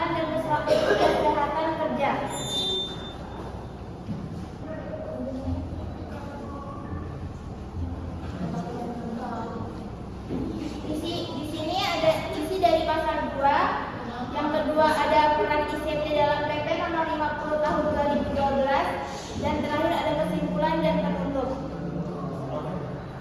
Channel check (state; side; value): identical; both; correlation 1.00